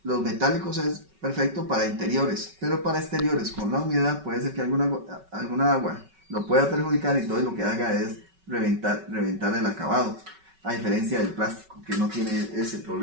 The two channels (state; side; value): late; left; 5.3 ms